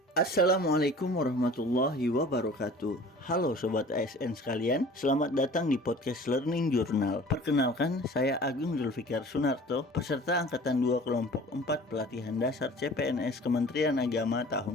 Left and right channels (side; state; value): both; normal; correlation 0.45